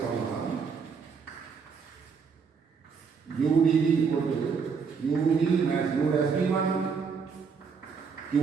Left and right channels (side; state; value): left; quieter; 5.7 dB